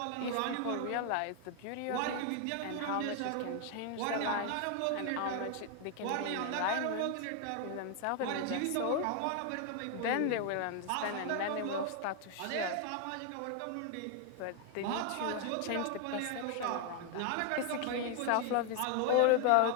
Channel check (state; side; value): different; both; correlation 0.00